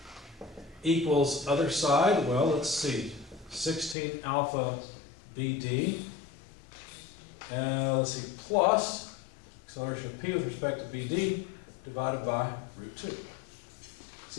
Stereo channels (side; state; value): right; drops out; at 4.0 s